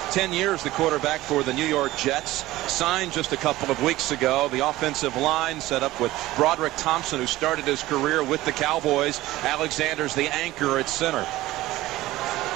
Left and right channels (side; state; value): left; quieter; 17.0 dB